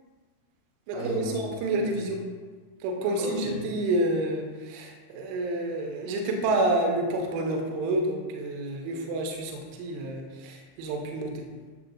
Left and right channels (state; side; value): late; left; 38 ms